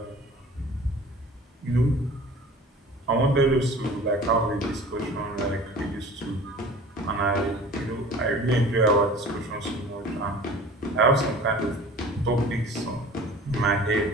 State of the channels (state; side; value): normal; both; correlation 0.43